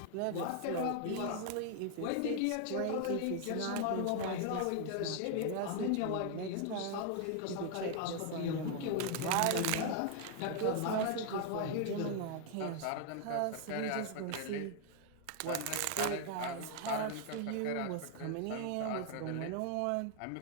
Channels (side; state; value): both; different; correlation 0.00